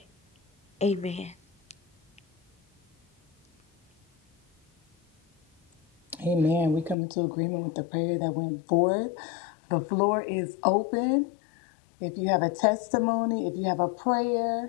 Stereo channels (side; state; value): right; drops out; at 7.0 s